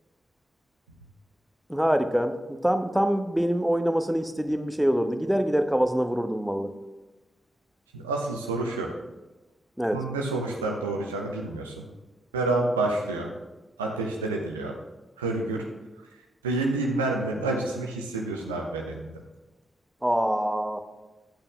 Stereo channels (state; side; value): normal; both; correlation 0.79